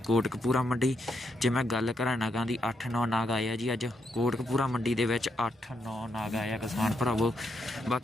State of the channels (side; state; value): both; normal; correlation 0.79